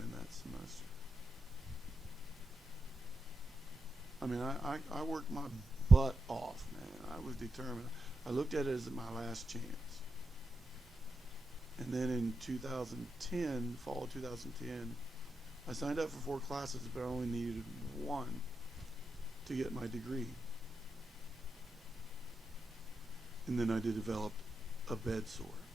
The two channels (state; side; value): normal; both; correlation 0.87